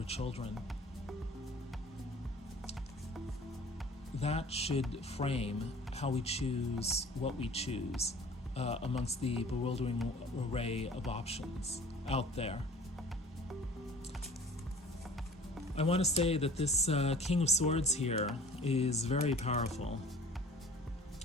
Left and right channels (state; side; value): normal; both; correlation 0.47